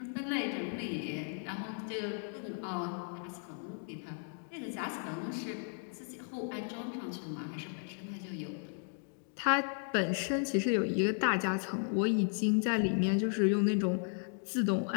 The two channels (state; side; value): silent; right; 54 dB below the other